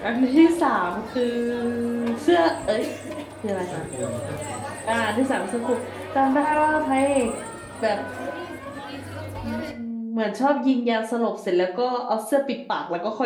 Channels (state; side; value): identical; both; correlation 1.00